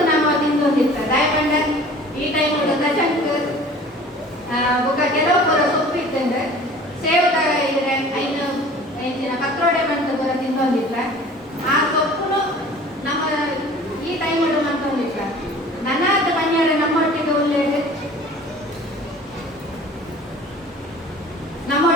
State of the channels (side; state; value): both; normal; correlation 0.46